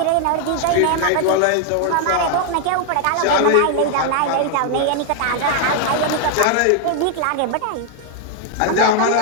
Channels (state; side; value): different; both; correlation 0.00